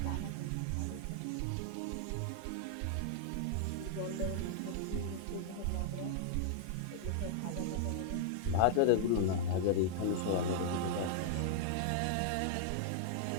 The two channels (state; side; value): different; both; correlation 0.00